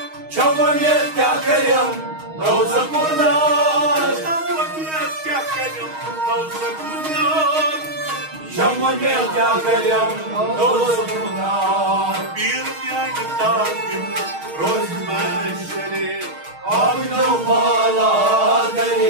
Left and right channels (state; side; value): late; left; 6.4 ms